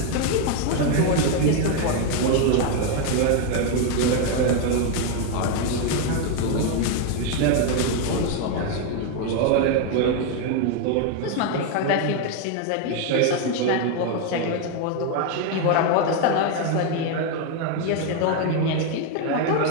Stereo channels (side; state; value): both; different; correlation 0.01